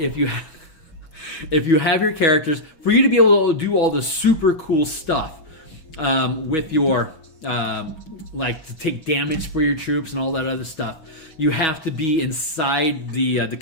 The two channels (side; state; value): right; late; 5.8 ms